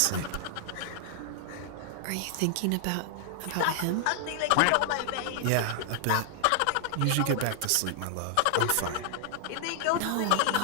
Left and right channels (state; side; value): different; both; correlation 0.00